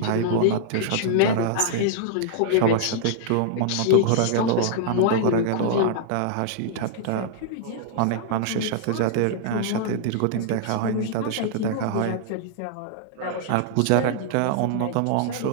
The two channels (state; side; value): different; both; correlation -0.01